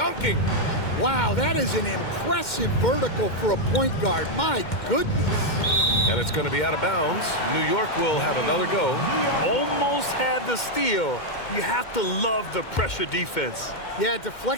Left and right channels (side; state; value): right; late; 2.1 ms